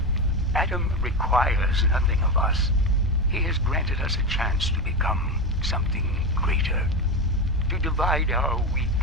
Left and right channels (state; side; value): normal; both; correlation 0.16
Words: Adam requires nothing of us. He has granted us a chance to become something greater. To divide our weak